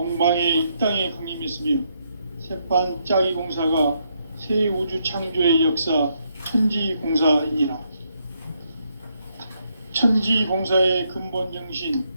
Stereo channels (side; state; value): both; inverted; correlation -0.76